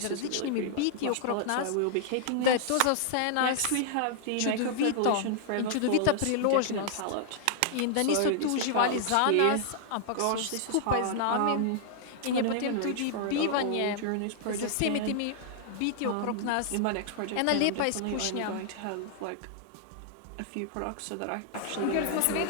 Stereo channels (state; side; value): different; both; correlation -0.01